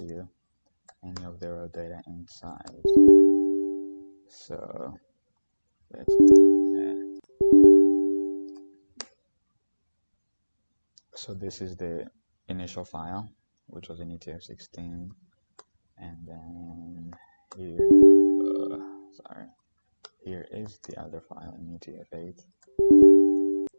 you any of the raw data inside. So let's do that. So this is the initial file, which was in UTF-16, and then here is the other file in UTF-8.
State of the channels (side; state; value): both; inverted; correlation -1.00